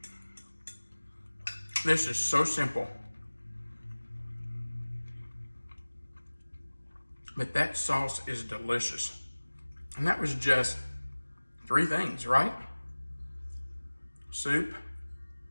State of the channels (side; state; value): both; inverted; correlation -1.00